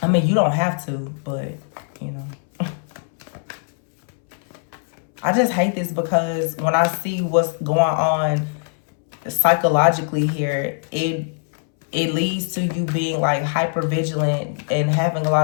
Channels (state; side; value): silent; right; 65 dB below the other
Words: mean, you don't have to, but, you know. I just hate this because when I see what's going on psychologically here, it leads to you being like hyper vigilant and having a